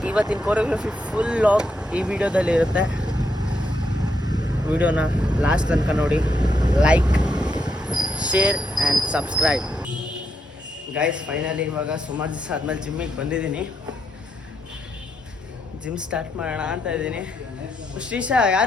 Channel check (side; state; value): both; normal; correlation 0.80